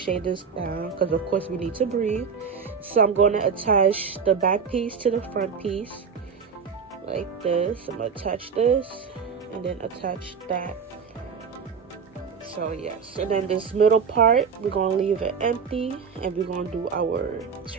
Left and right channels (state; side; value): quieter; left; 6.1 dB